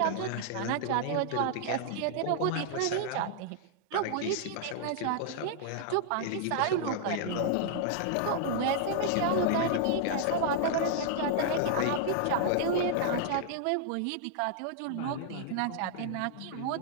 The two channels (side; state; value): both; different; correlation -0.01